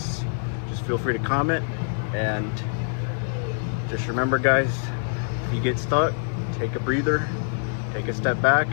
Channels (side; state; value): right; silent; digital silence